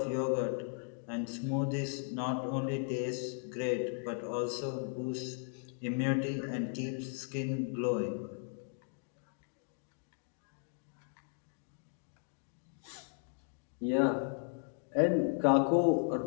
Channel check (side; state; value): right; silent; 54 dB below the other